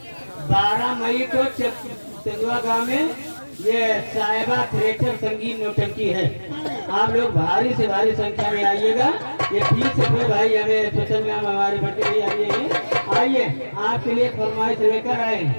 12 मई को तेंदुआ गांव में ये साहिबा थिएटर संगीत नौटंकी है। आप लोग भारी से भारी संख्या में आइएगा। ये 20 रुपये भाई हमें स्पेशल में हमारे बच्चे भी आइए आपके लिए फरमाइश लेकर आए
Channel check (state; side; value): inverted; both; correlation -1.00